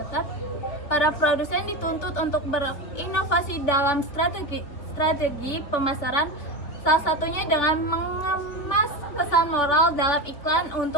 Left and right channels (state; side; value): late; right; 3.3 ms